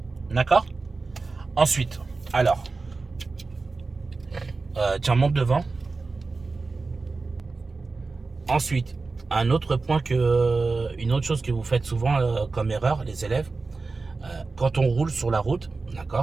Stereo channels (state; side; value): quieter; left; 3.9 dB